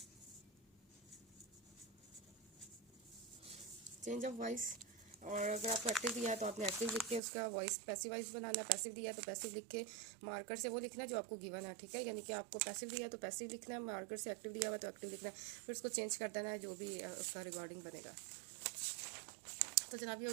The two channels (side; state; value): left; drops out; at 7.2 s